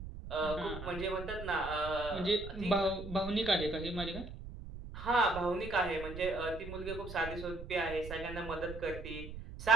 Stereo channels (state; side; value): noise; right; rumble, 10 dB below the sound